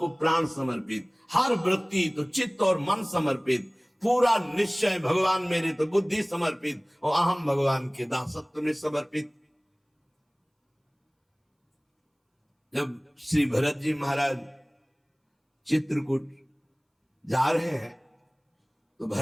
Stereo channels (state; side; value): identical; both; correlation 1.00